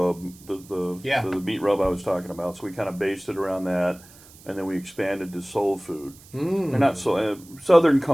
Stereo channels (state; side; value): noise; right; hiss, 23 dB below the sound